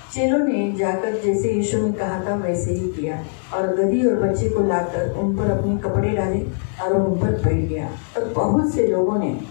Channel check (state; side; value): silent; right; 64 dB below the other